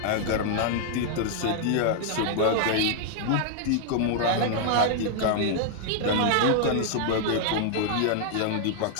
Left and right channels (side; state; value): both; different; correlation -0.01